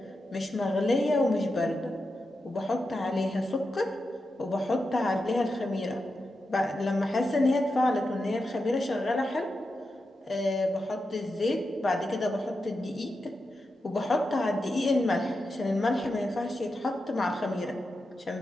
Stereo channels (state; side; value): normal; both; correlation 0.89